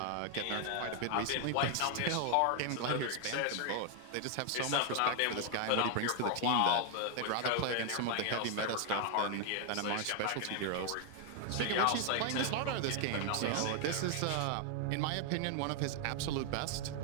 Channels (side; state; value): both; different; correlation 0.00